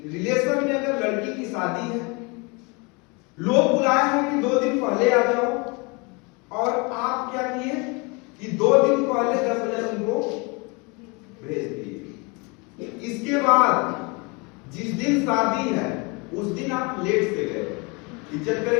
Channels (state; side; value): quieter; right; 29.4 dB